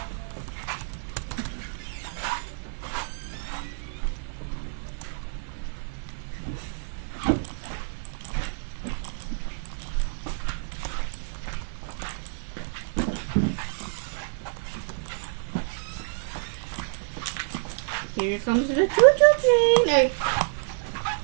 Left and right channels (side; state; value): left; silent; digital silence